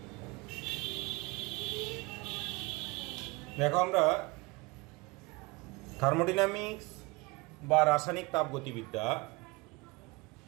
দেখো, আমরা থার্মোডাইনামিক্স বা রাসায়নিক তাপগতিবিদ্যা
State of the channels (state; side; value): quieter; left; 25.0 dB